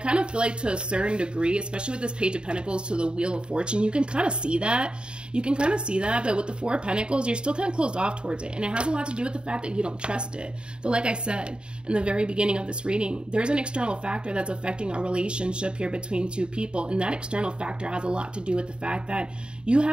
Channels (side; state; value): left; late; 0.051 ms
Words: of feel like to a certain degree, especially with this Page of Pentacles to the Wheel of Fortune, you can kind of see that. You can kind of see that, but with the Four of Pentacles, you're still kind of closed off towards it. And it has a lot to do with the fact that you don't trust it. But like I said in the very beginning of this reading, there's an external factor that's affecting our relationship here between two people. And that external factor has a lot to do with the fact that you